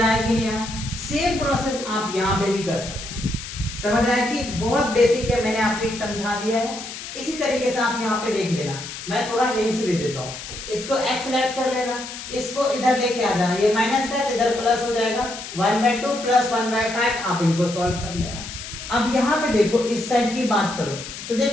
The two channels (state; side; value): noise; left; hiss, 10 dB below the sound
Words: आया कि नहीं आया? सेम प्रोसेस आप यहाँ पे भी कर सकते हैं। समझ आया कि बहुत बेसिक है, मैंने आपको एक समझा दिया है। इसी तरीके से आप यहाँ पे देख लेना, मैं थोड़ा हिंट्स दे देता हूँ। इसको x लेट कर लेना, इसको इधर लेके आ जाना, ये माइनस है तो इधर प्लस हो जाएगा, 1/2 प्लस 1/5 आप इनको सॉल्व कर लेना। अब यहाँ पे देखो इस साइड की बात करो, तो